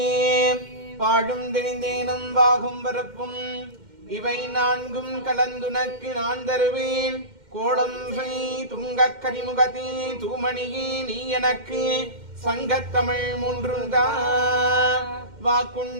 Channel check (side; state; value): left; late; 2.1 ms